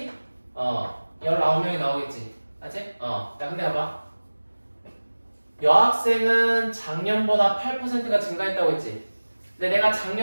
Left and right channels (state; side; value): inverted; both; correlation -1.00